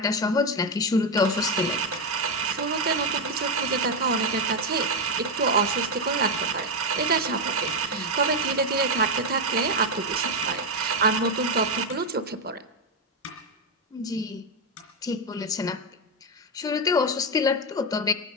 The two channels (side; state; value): both; normal; correlation 0.07